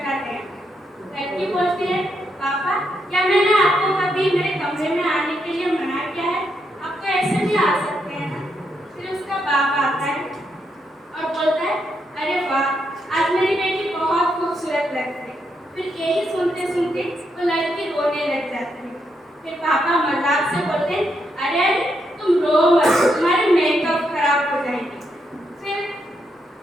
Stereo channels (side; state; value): both; normal; correlation 0.80